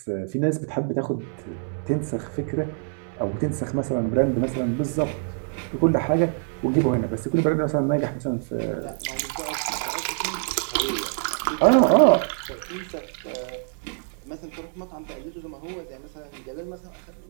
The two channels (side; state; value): left; silent; 58 dB below the other